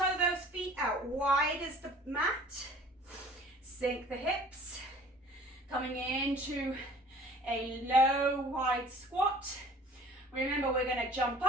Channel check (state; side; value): normal; both; correlation 0.49